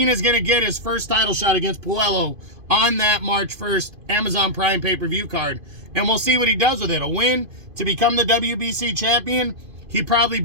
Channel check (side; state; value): left; late; 2.5 ms